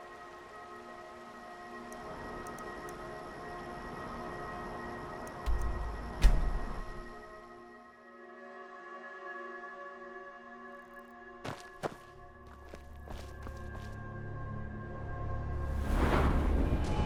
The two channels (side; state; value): both; identical; correlation 1.00